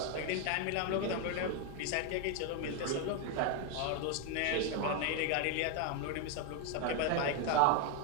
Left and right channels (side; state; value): both; different; correlation 0.02